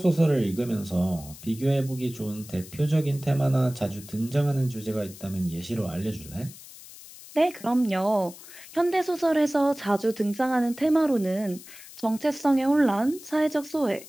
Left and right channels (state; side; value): noise; left; hiss, 17 dB below the sound